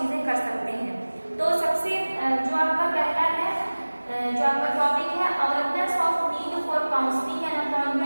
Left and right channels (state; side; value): inverted; both; correlation -1.00